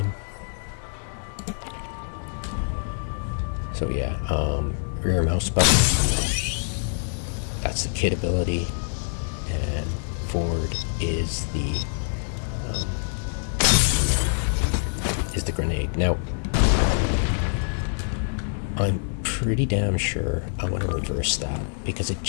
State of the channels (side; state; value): right; silent; digital silence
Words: So yeah, rear mouse button, that's the kit ability, and forward is the grenade. Now, I'm pretty damn sure I want to reverse that, because I